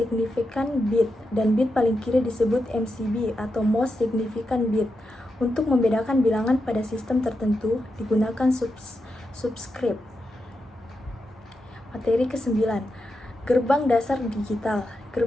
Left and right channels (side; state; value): both; normal; correlation 0.87